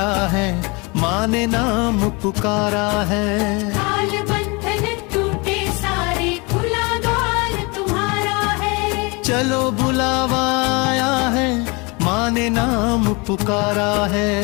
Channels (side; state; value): right; quieter; 28.2 dB